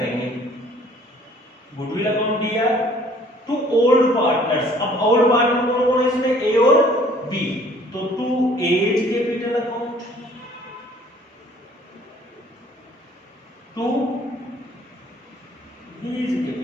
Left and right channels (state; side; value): normal; both; correlation 0.56